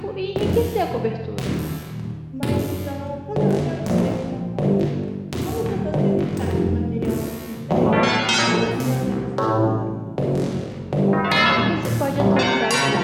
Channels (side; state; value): both; identical; correlation 1.00